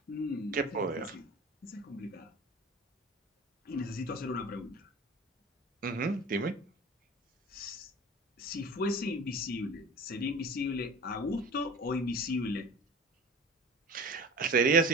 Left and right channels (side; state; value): both; normal; correlation 0.38